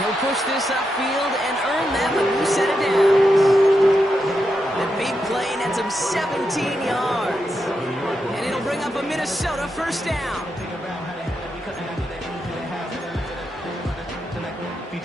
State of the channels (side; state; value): both; normal; correlation 0.85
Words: push this upfield and earn them a new set of downs. The big play nets him 17 yards. And it'll bring up a Minnesota 1st down. If you're